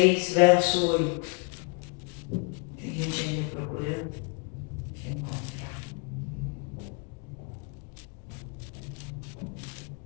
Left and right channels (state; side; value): quieter; right; 34.3 dB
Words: verso 8. Tem gente ainda procurando? Deixa eu encontrar.